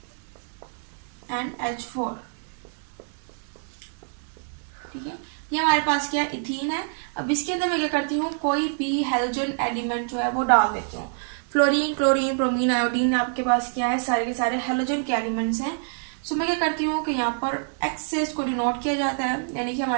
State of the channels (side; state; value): left; silent; 61 dB below the other